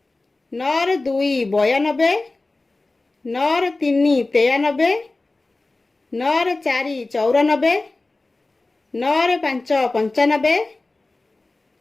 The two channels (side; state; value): right; quieter; 3.2 dB